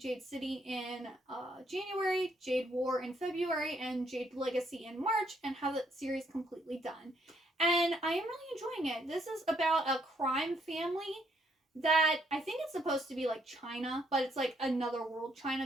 City in January, Jade War in February, and Jade Legacy in March, and have the series completely done. And I am really enjoying it. This is about a crime family that I think it's supposed to be like China, but it's like another world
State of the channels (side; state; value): both; normal; correlation 0.71